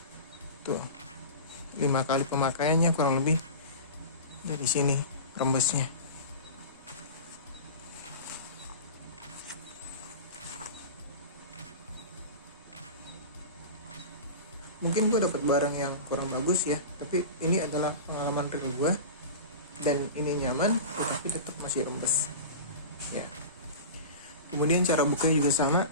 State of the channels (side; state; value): both; inverted; correlation -0.31